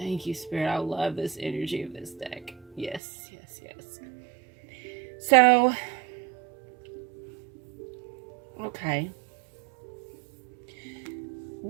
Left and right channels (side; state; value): left; drops out; at 3.0 s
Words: you, Spirit. I love this energy of this deck. Yes, yes, yes. So, okay.